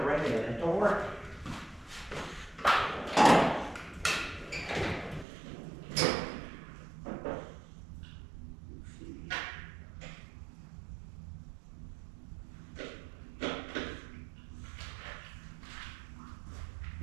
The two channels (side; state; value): left; drops out; at 5.2 s